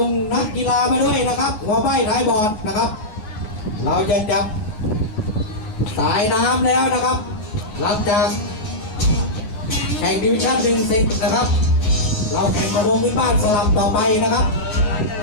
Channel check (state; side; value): late; right; 9.5 ms